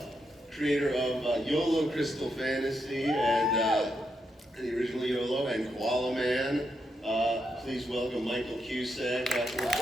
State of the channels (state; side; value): normal; both; correlation 0.82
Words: creator of YOLO Crystal Fantasy and the original YOLO and Koala Man. Please welcome Michael Cusack.